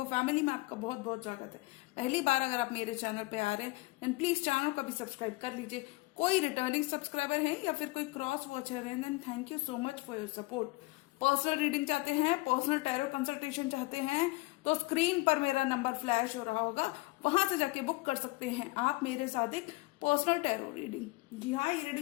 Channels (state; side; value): quieter; right; 23.3 dB